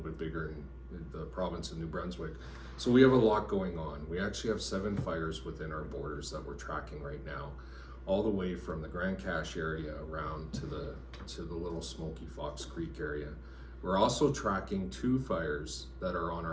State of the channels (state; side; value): identical; both; correlation 1.00